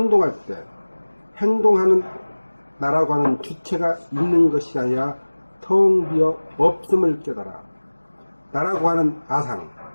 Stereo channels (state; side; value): inverted; both; correlation -1.00